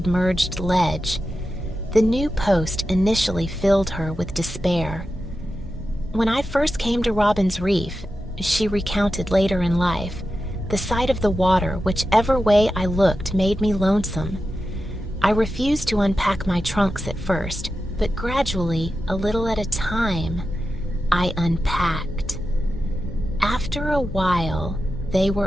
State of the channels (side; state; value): both; normal; correlation 0.91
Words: ledge. The new post initially filled her with despair. When I first came to Robin's Reef, she recounted later in life, the sight of the water, whichever way I looked, made me lonesome. I refused to unpack my trunks at first, but gradually, a little at a time, I unpacked. After a while, they